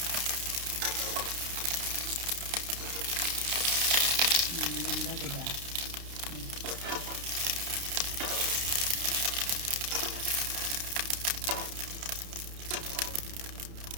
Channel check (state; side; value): late; left; 30 ms